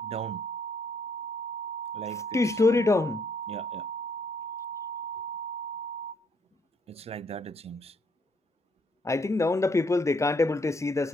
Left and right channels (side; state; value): both; normal; correlation 0.69